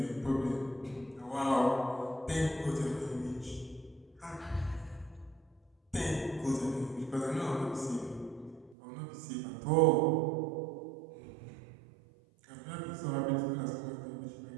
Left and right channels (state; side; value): drops out; left; at 8.8 s